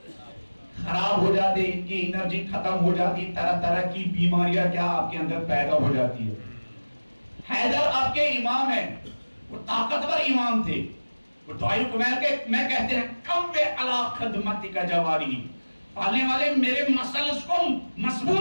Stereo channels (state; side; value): inverted; both; correlation -1.00